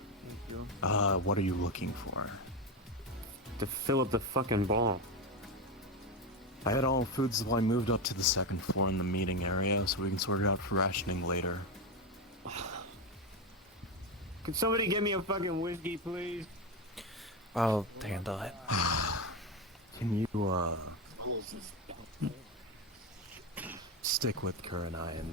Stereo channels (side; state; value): both; normal; correlation 0.14